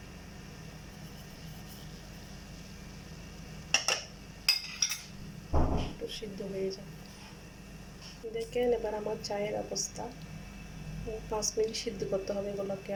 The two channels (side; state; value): both; identical; correlation 1.00